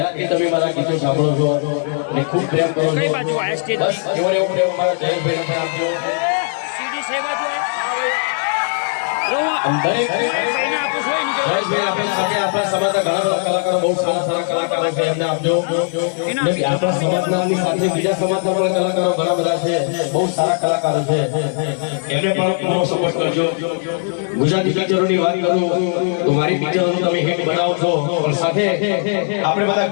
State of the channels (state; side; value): silent; right; digital silence